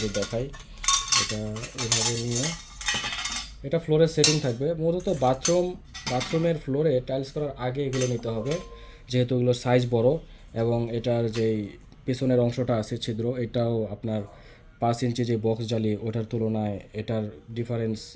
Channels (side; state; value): both; identical; correlation 1.00